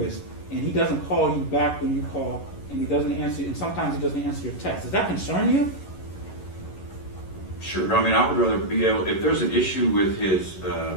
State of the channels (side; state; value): right; late; 11 ms